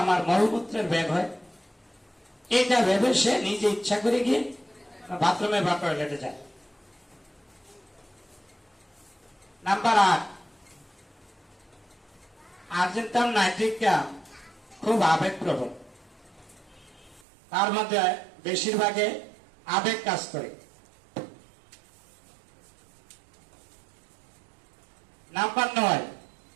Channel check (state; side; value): drops out; left; at 17.2 s